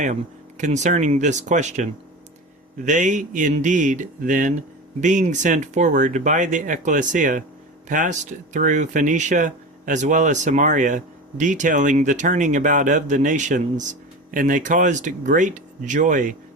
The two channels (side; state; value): both; normal; correlation 0.28